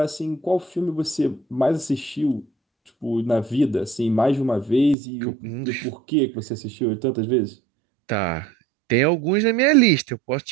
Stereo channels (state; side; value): drops out; left; at 5.0 s